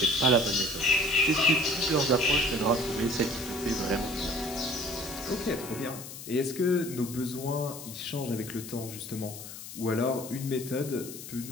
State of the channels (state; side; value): noise; left; hiss, 12 dB below the sound